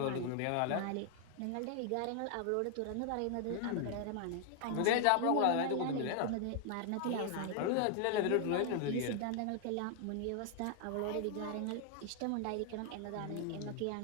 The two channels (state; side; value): different; both; correlation 0.00